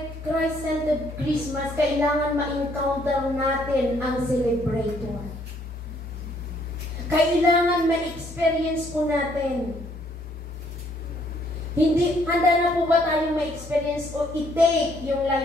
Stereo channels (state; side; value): normal; both; correlation 0.67